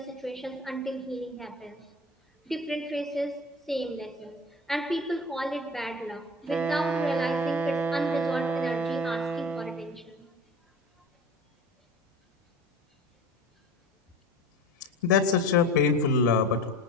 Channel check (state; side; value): normal; both; correlation 0.38